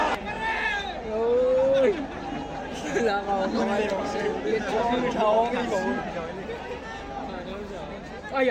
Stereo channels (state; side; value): identical; both; correlation 1.00